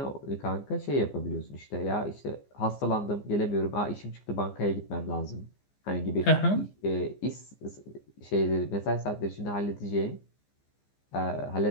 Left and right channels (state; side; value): late; right; 15 ms